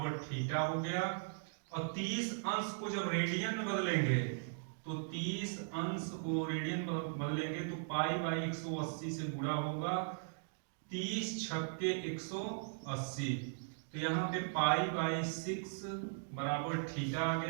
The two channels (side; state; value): left; silent; digital silence